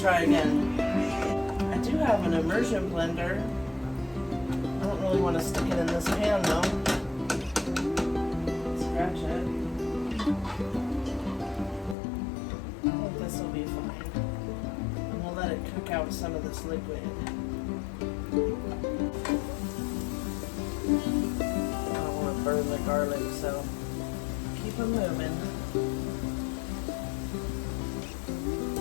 again. I do have an immersion blender. I don't really want to stick it in this pan though. Scratch it. I think this will be fine. And we'll let it cook out some of this liquid. I don't want to burn the garlic, so keep them moving.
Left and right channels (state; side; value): drops out; right; at 12.0 s